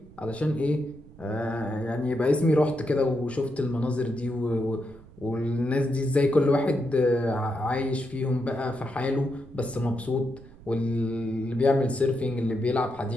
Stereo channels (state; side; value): noise; right; rumble, 21 dB below the sound